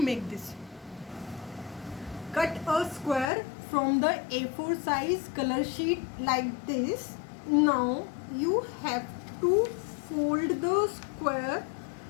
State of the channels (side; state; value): right; drops out; at 3.3 s